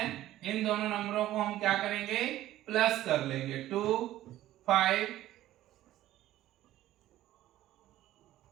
इन दोनों नंबरों को हम क्या करेंगे? प्लस कर लेंगे। 2 5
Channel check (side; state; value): left; quieter; 14.3 dB